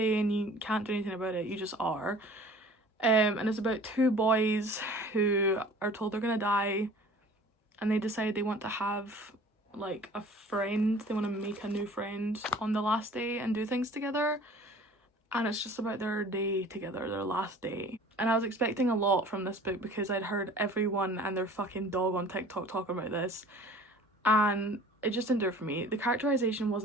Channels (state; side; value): normal; both; correlation 0.47